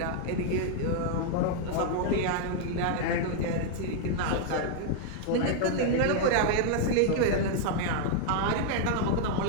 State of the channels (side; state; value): both; different; correlation 0.00